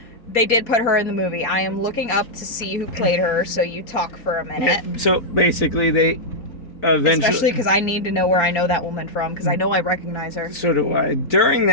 They did put her in the movie. I am looking up to see who played her, so you talk for a minute. So basically, they eventually... Especially because I need to know where I know that woman from, because I know I recognize her. So do I. During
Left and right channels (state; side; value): late; right; 4.2 ms